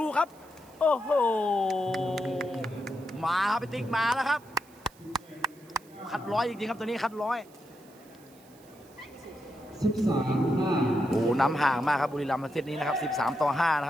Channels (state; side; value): noise; right; hiss, 27 dB below the sound